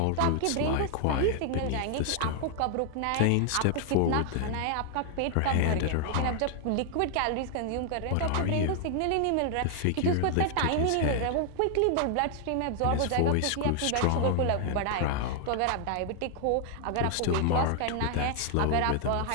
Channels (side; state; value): both; different; correlation 0.00